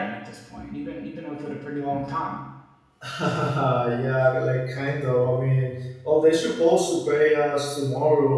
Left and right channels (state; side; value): identical; both; correlation 1.00